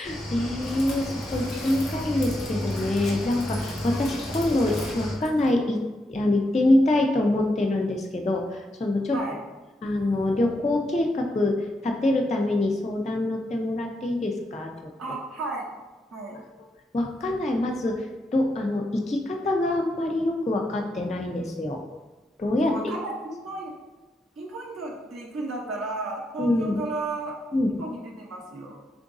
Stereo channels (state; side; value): normal; both; correlation 0.82